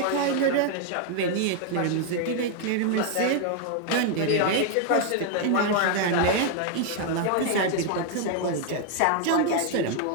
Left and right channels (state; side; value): different; both; correlation 0.00